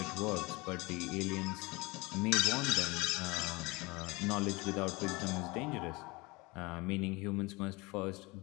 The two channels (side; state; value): right; quieter; 24.6 dB